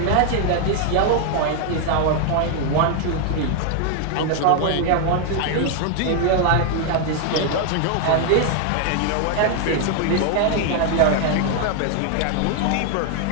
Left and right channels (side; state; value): both; different; correlation 0.00